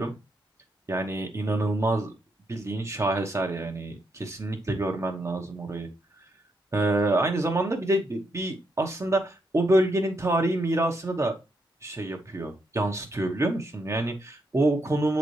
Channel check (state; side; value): normal; both; correlation 0.79